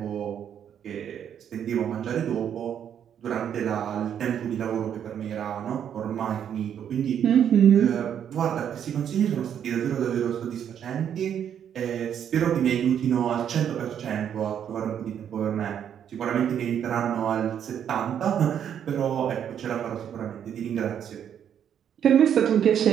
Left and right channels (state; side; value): quieter; left; 9.0 dB